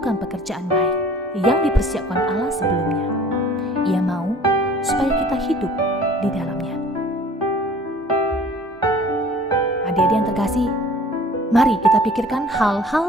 pekerjaan baik yang dipersiapkan Allah sebelumnya. Ia mau supaya kita hidup di dalamnya. Adik-adik yang terkasih, mari kita pikirkan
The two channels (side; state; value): both; normal; correlation 0.49